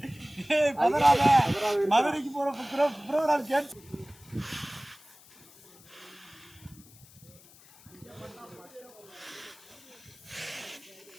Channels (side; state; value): left; noise; hiss, 24 dB below the sound